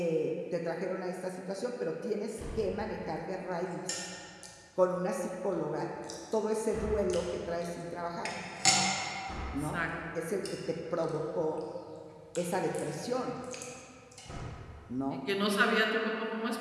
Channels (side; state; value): both; identical; correlation 1.00